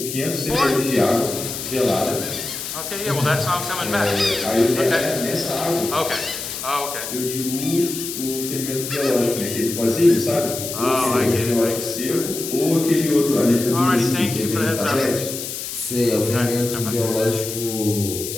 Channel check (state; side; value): noise; left; hiss, 6 dB below the sound